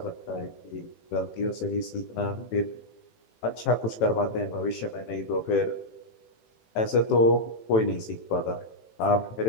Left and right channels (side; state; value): right; late; 18 ms